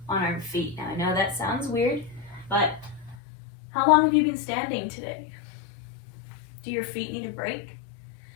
on our feet. Now I know that sounds weird, but how long have you been standing today? Do your feet need a break?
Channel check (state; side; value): drops out; right; at 3.2 s